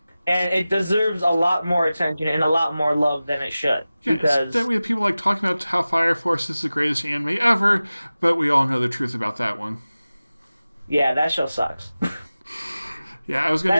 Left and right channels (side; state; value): both; inverted; correlation -0.96